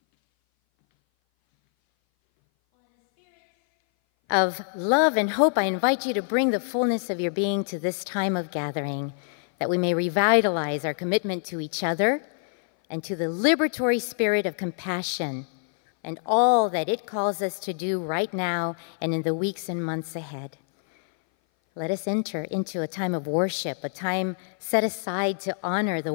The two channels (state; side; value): silent; right; 58 dB below the other